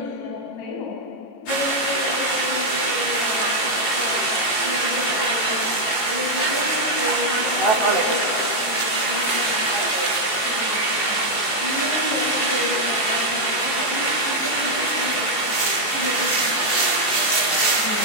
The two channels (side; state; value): right; late; 18 ms